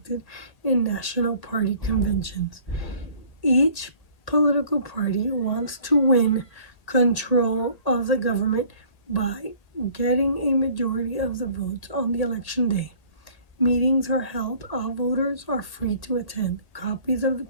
in national party conventions. Each political party wants to win control of the government by getting a majority of the votes on the election day. Meetings are held. All voters are free to attend. Copies of the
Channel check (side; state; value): right; late; 1.8 ms